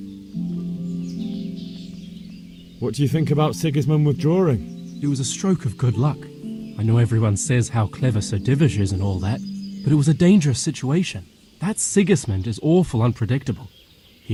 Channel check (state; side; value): identical; both; correlation 1.00